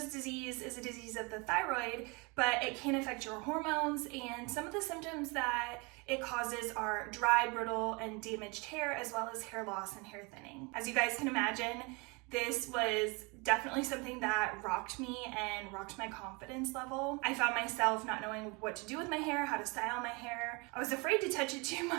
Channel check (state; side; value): quieter; left; 28.8 dB